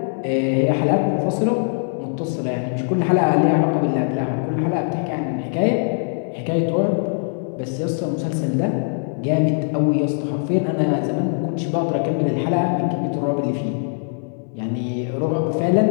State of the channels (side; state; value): right; silent; 65 dB below the other